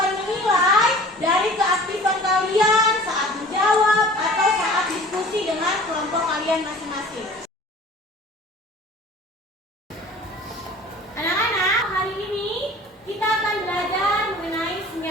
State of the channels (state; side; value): normal; both; correlation 0.45